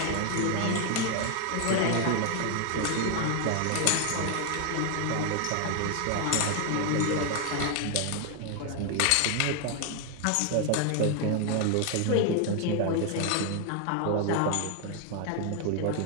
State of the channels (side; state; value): both; different; correlation 0.00